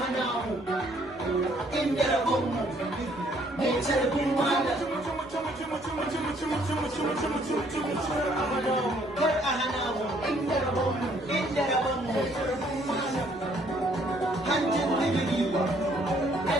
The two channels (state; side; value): noise; right; rumble, 29 dB below the sound